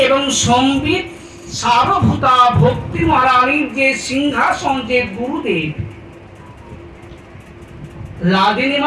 এবং সম্বিত সারভূতা ভক্তি মহারানীর যে সিংহাসন, যে গুরুদেব, লাদিনী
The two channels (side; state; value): both; identical; correlation 1.00